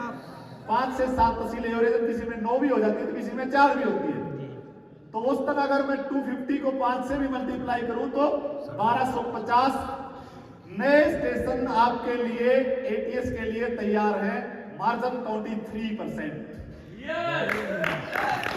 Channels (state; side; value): identical; both; correlation 1.00